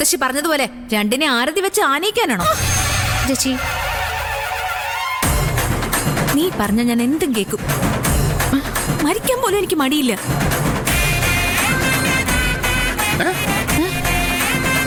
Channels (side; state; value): both; identical; correlation 1.00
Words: പറഞ്ഞതുപോലെ രണ്ടിനെ ആരതി വെച്ച് ആനയിക്കാനാണോ? ചേച്ചി, നീ പറഞ്ഞ ഞാൻ എന്തും കേക്കും. മരിക്കാൻ പോലും എനിക്ക് മടിയില്ല.